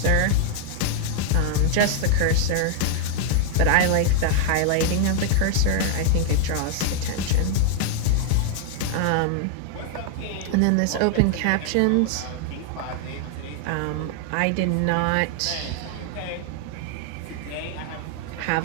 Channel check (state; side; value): different; both; correlation 0.00